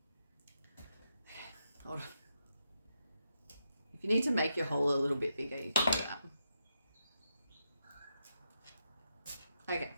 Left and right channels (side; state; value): both; inverted; correlation -0.83